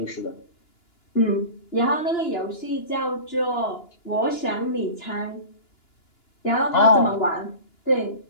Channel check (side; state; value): right; late; 2.9 ms